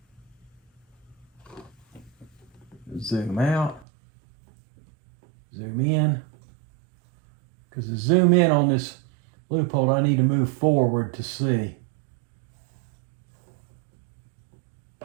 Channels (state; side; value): drops out; left; at 3.9 s